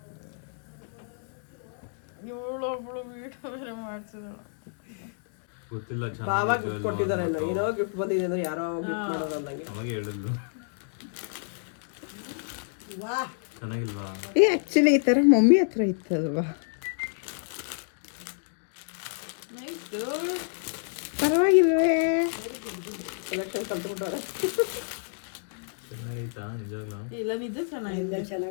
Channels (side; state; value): right; silent; digital silence